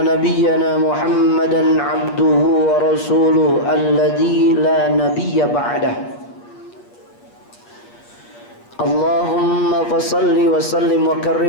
nabiyyana Muhammadan abduhu wa rasuluhu alladzi la nabiyya ba'dah. Allahumma fasalli wa sallim wa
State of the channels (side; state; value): right; late; 8.4 ms